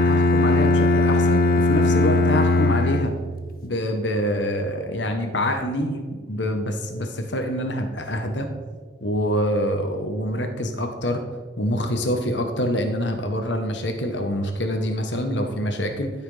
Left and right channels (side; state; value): both; normal; correlation 0.51